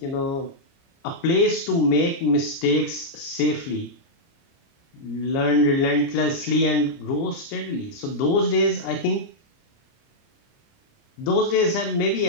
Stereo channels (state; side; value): late; right; 29 ms